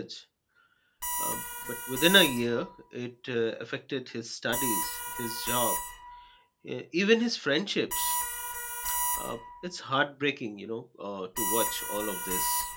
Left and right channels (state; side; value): identical; both; correlation 1.00